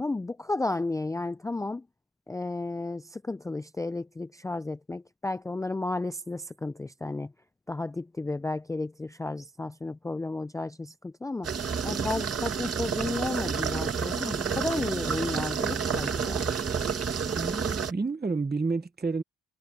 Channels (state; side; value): normal; both; correlation 0.74